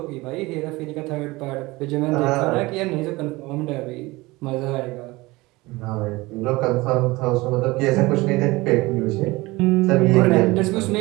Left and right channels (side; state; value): left; quieter; 21.5 dB